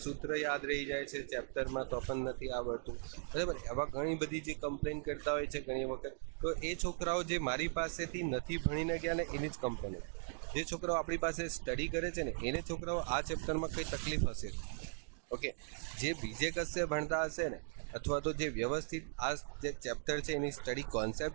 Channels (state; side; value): silent; left; digital silence